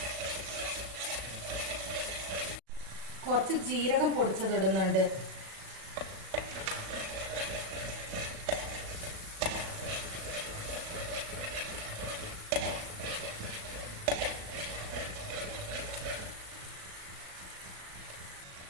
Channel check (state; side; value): late; left; 37 ms